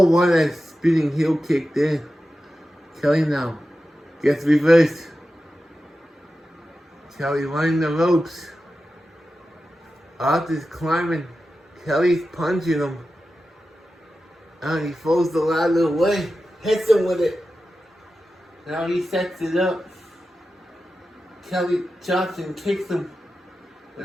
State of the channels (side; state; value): both; normal; correlation 0.92